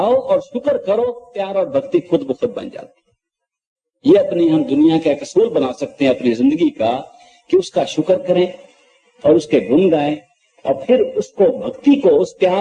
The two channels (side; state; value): both; identical; correlation 1.00